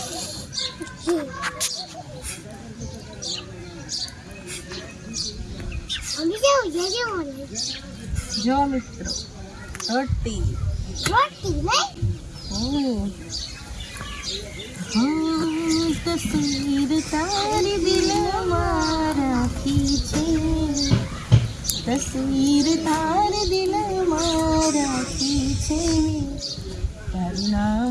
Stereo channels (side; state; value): both; identical; correlation 1.00